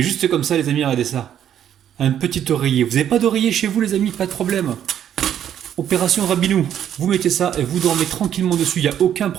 juste comme ça les amis, regardez ça. Un petit oreiller. Vous n'avez pas d'oreiller chez vous les amis, pas de problème. Opération Rabinou, vous mettez ça et vous dormez tranquillement dessus, il n'y a aucun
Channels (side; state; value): left; quieter; 10.0 dB